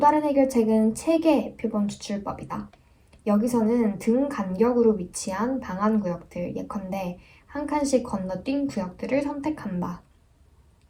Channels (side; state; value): both; identical; correlation 1.00